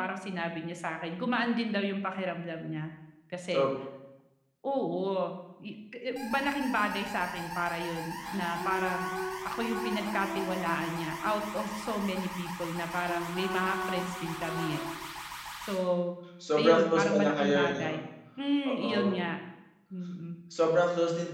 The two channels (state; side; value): identical; both; correlation 1.00